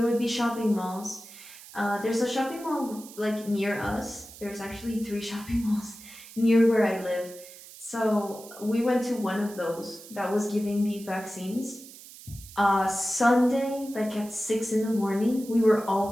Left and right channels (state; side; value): noise; right; hiss, 18 dB below the sound